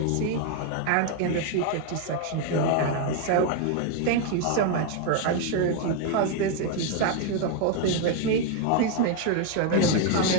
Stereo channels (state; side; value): different; both; correlation 0.01